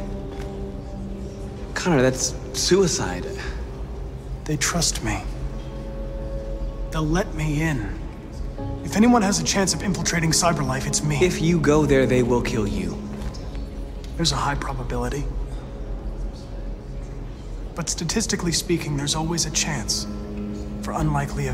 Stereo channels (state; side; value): identical; both; correlation 1.00